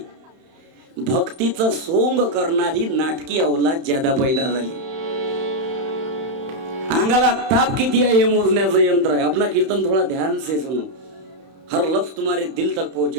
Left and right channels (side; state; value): left; late; 31 ms